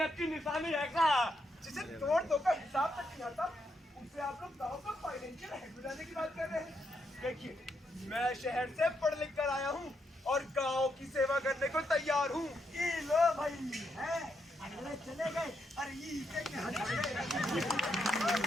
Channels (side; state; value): both; normal; correlation 0.80